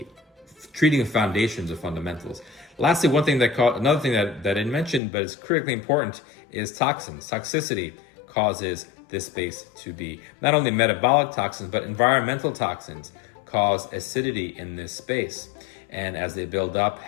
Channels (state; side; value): drops out; right; at 5.0 s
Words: treating the foundations of fundamentals. Lastly, another thing that I didn't mention, but is critically important, is toxins. Toxicity causes this space to be not only metabolic toxins, but environmental toxins cause acidity in this space. And as they build up,